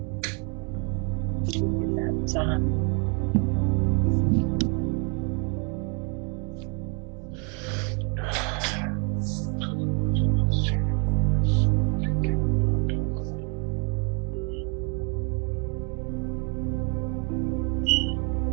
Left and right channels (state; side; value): quieter; left; 36.2 dB